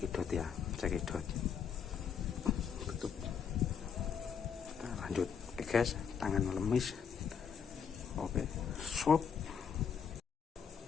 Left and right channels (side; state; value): right; quieter; 7.1 dB